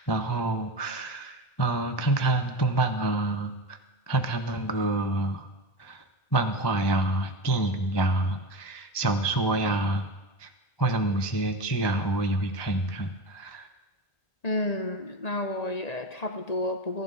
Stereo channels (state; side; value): late; right; 1.2 ms